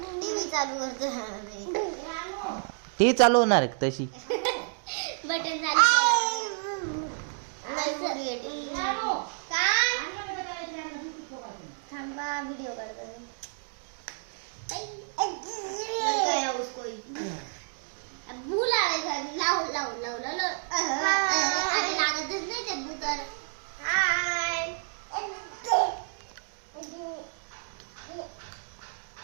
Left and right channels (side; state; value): left; silent; digital silence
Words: टी चालू होणार तशी. बटन थांबा व्हिडिओ करतो. लागतच नाही ते भूतर.